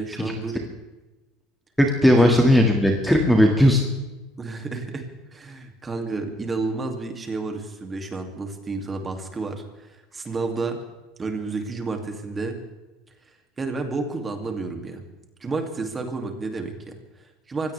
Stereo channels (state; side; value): normal; both; correlation 0.75